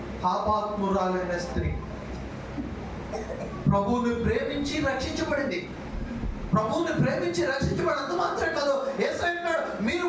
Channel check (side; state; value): both; identical; correlation 1.00